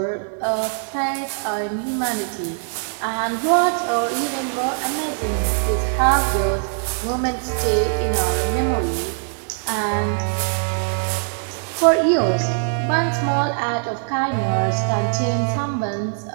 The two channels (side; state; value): left; silent; 63 dB below the other